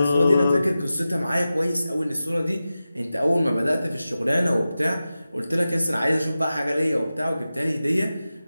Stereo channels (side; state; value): both; inverted; correlation -0.94